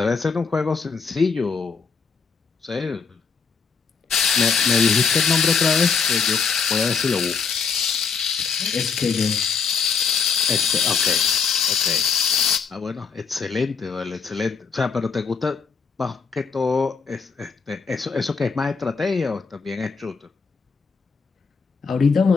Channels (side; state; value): right; quieter; 5.6 dB